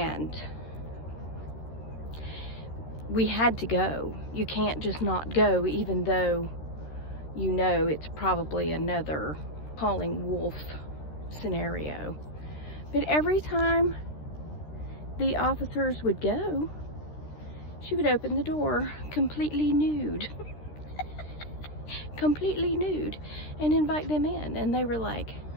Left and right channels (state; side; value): late; right; 13 ms